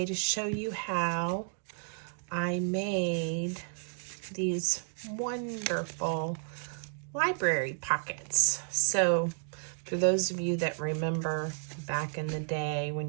to show you how I made these wonderful library pockets. So for those of you that remember back in the day when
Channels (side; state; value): left; silent; 56 dB below the other